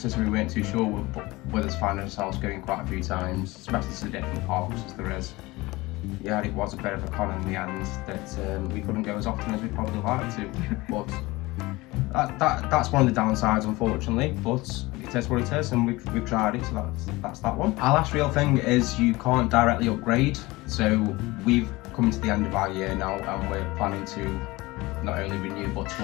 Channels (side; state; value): right; quieter; 21.2 dB